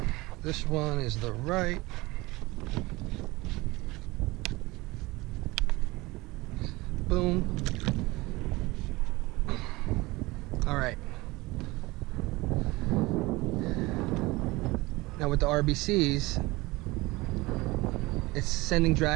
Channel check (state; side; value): quieter; left; 21.7 dB